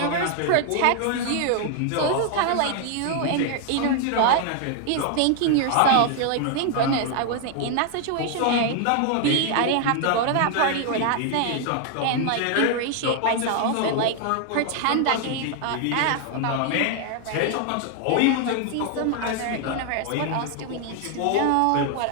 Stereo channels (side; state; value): both; different; correlation 0.00